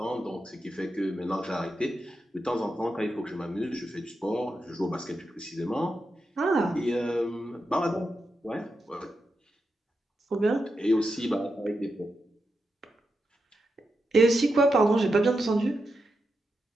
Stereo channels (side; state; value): both; normal; correlation 0.87